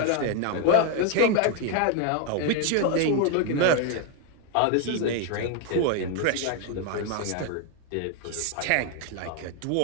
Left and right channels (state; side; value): different; both; correlation 0.01